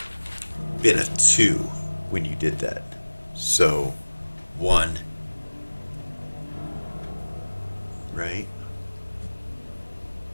been a 2 when you did that. So 1, right?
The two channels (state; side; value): inverted; both; correlation -1.00